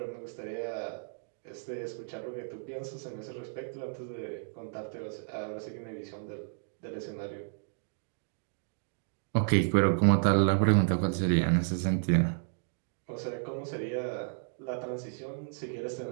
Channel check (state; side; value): silent; left; digital silence